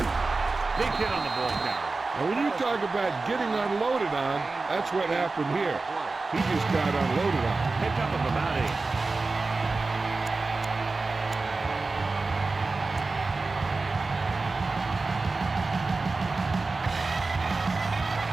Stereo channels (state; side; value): quieter; left; 3.7 dB